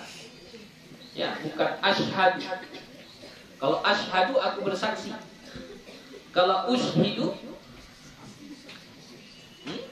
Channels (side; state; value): both; identical; correlation 1.00